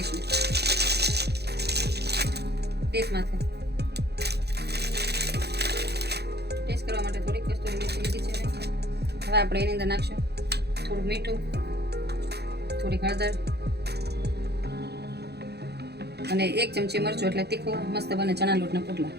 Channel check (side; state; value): left; late; 0.48 ms